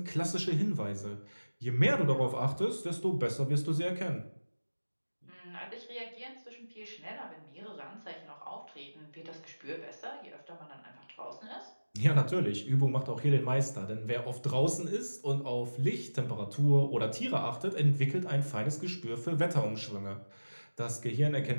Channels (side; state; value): both; inverted; correlation -1.00